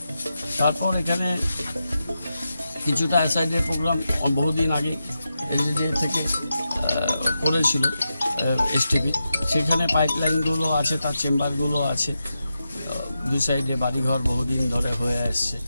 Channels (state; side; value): inverted; both; correlation -0.89